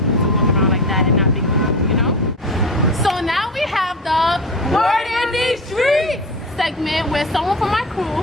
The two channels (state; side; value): normal; both; correlation 0.26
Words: to walk around like that and not big people, you know? So now we have the Word in these Streets segment, where someone from my crew,